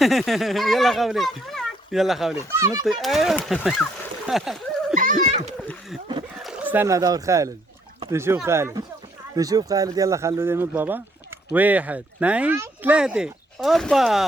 يلا خولي. يلا خولي نطي. ايوه. استنى دور خالد. نشوف خالد. نشوف خالد. يلا خلوا ينط بابا. 1 2 3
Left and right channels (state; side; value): normal; both; correlation 0.69